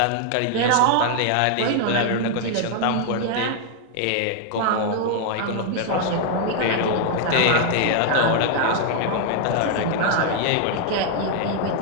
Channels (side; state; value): both; different; correlation 0.00